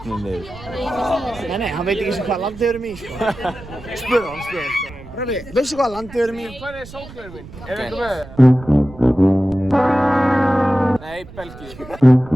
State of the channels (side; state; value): right; noise; rumble, 17 dB below the sound